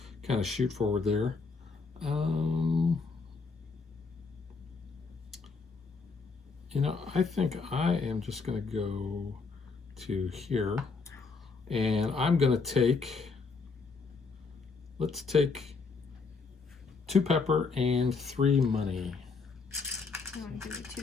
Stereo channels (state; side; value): quieter; right; 4.5 dB